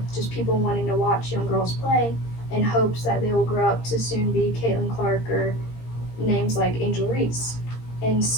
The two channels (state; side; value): late; right; 17 ms